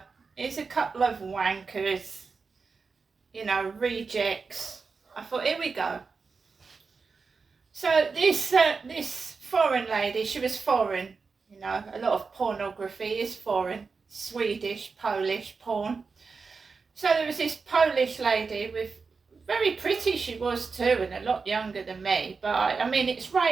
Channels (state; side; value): quieter; left; 4.8 dB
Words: here's a couple of wankers, rejects. I thought, here we go. So this foreign lady, she was foreign, a lot of pornography is foreign, Swedish, Polish porn. So there was this Polish lady with, very pretty she was too, and a lot younger than me, but I mean, it's